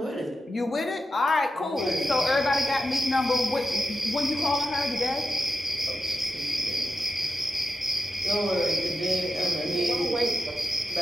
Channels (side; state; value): both; normal; correlation 0.89